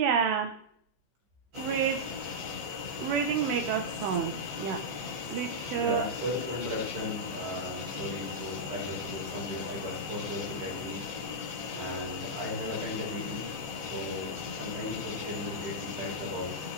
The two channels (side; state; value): left; late; 14 ms